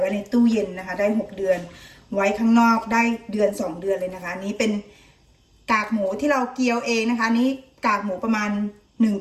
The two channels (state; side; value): identical; both; correlation 1.00